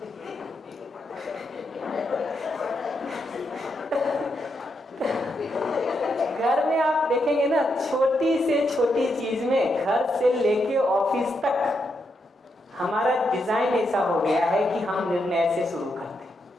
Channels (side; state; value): both; normal; correlation 0.82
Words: घर में आप देखेंगे ना, छोटी से छोटी चीज में, घर से लेके ऑफिस तक हमारा डिजाइन ऐसा हो गया है कि हम निर्णय से शुरू करते हैं।